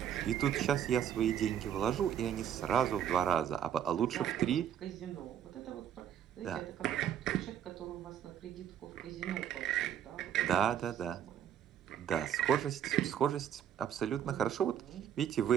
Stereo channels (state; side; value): quieter; left; 9.5 dB